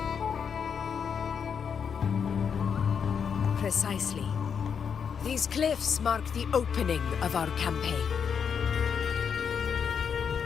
Precisely. These cliffs mark the opening of our campaign.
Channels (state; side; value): quieter; right; 6.9 dB